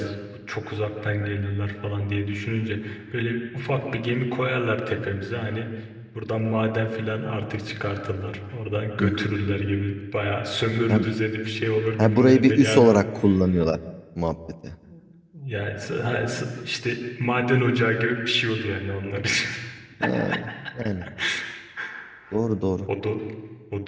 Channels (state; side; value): identical; both; correlation 1.00